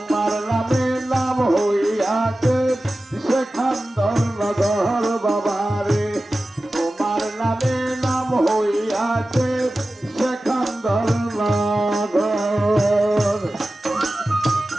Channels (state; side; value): normal; both; correlation 0.95